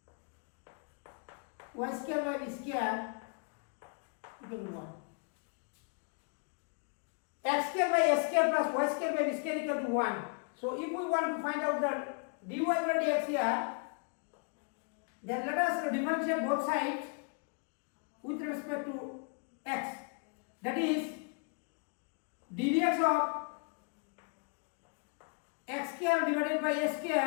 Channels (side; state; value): right; quieter; 38.0 dB